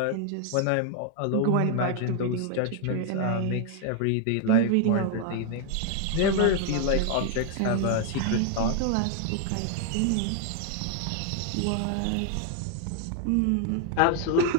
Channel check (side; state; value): both; different; correlation 0.00